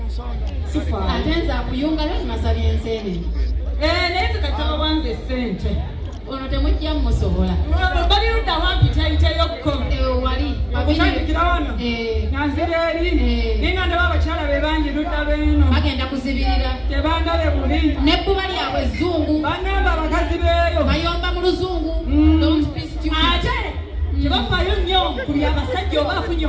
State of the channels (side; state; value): both; identical; correlation 1.00